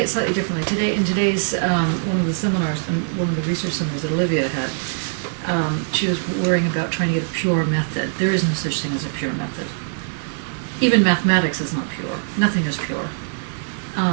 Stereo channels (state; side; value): silent; left; digital silence